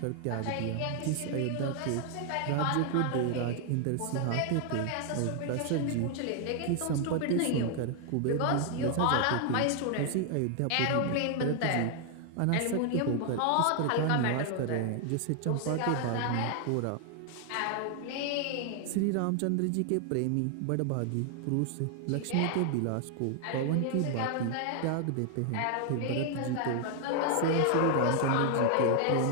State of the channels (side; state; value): both; different; correlation 0.00